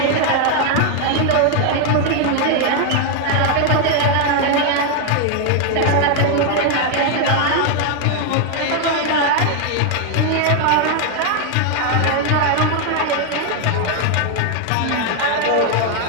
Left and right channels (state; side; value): different; both; correlation 0.01